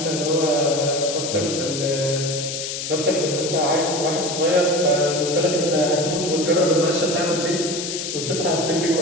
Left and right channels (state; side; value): noise; left; hiss, 5 dB below the sound